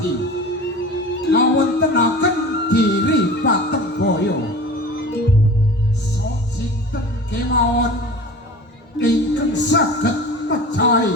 ngawontenaken Giri Patembaya. Sinten kemawon ingkang saged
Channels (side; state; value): both; normal; correlation 0.37